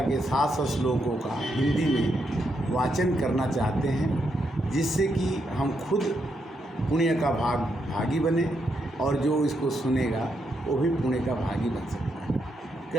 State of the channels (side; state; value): both; normal; correlation 0.80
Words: के 700 श्लोकों का हिंदी में वाचन करना चाहते हैं, जिससे कि हम खुद पुण्य का भागी बने और जो इसको सुनेगा वो भी पुण्य का भागी बन सकता है।